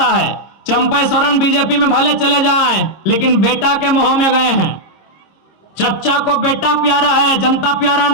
है। चंपई सोरेन बीजेपी में भले चले जाएं, लेकिन बेटा के मोह में गए हैं। चच्चा को बेटा प्यारा है, जनता प्यारा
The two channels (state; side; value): late; right; 26 ms